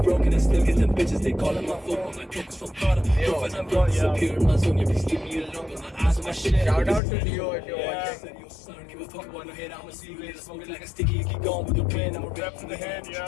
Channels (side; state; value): right; drops out; at 7.0 s